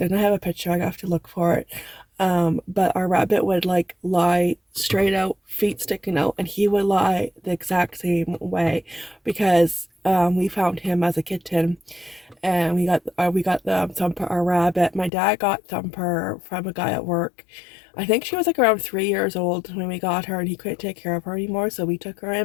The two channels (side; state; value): right; drops out; at 15.1 s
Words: and I have a picture. I have to look for it. But our rabbit would like lie straight out, feet sticking out, and he would lie the exact same way because we found him as a kitten, and we got the Thumper, our rabbit. My dad got Thumper from a guy at work. I think she was like around 3 years old when we got her, and he couldn't take care of her anymore, so we took her